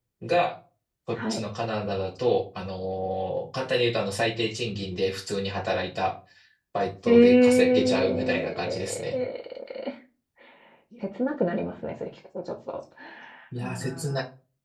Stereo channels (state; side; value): identical; both; correlation 1.00